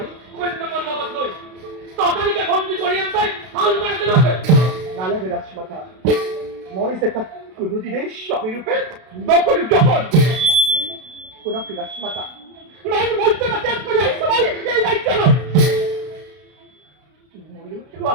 কন্যা মল্লবত লই ততদিকে বন্দি করিয়ান তাই হাল মারতে রাখে নালে রাজমাতা মই সেটা কোনদিনে স্বামী রূপে নকল যখন কোনা রাজমাতা মান মর্যাদা ত্যাগ করে এই সময় এই দায়িত্ব নয় ময়ো তো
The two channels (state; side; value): late; left; 32 ms